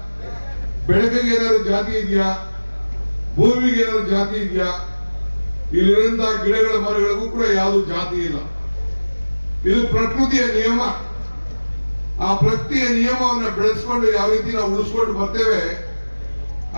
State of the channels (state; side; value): inverted; both; correlation -1.00